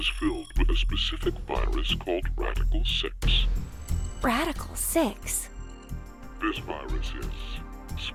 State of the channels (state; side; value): identical; both; correlation 1.00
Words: filled with a specific virus called Radical 6. Radical 6? This virus is